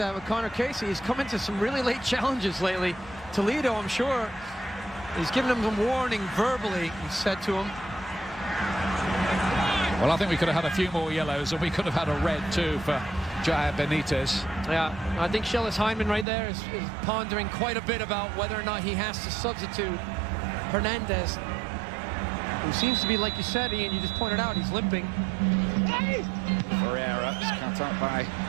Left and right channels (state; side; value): drops out; left; at 16.2 s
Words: with Connor Casey. He's come into some really late challenges lately. Toledo, I'm sure, he's given him some warning verbally, he said to him. Well, I think we could have had a few more yellows, and we could have had a red too for Jair Benitez. Yeah, I think Shellis Hyndman right there is pondering quite a bit about whether or not he has to substitute Hernandez, who seems to be, like you said, Ian, you just pointed out, he's limping. Ferreira is cut up by